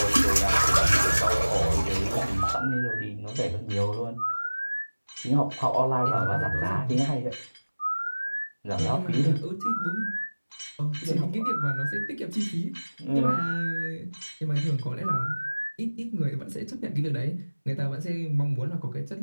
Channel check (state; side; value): inverted; both; correlation -1.00